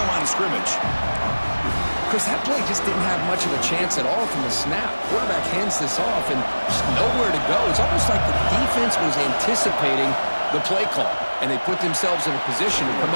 line of scrimmage. Chris, that play just didn't have much of a chance at all from the snap. Quarterback hands this off and just nowhere to go. It's almost like the defense was anticipating the play call, and they put themselves in a position to come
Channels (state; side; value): inverted; both; correlation -1.00